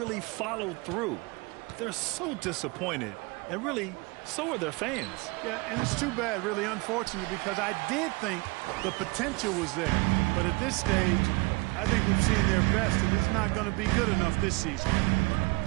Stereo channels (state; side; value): quieter; left; 26.5 dB